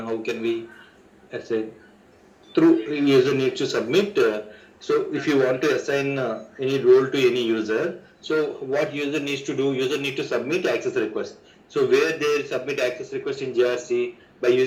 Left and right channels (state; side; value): identical; both; correlation 1.00